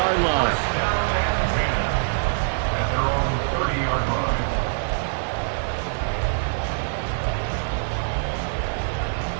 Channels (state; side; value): silent; left; digital silence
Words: line. At their own 30-yard line.